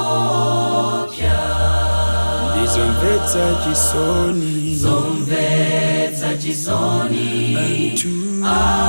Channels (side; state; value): both; inverted; correlation -1.00